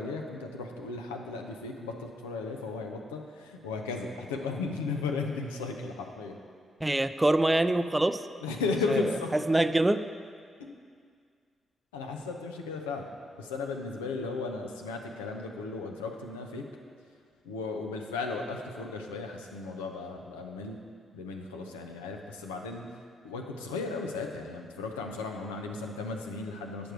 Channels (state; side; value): normal; both; correlation 0.74